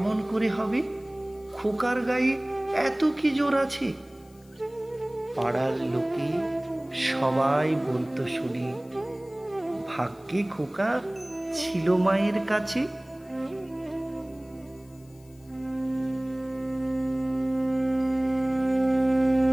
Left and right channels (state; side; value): noise; left; hiss, 29 dB below the sound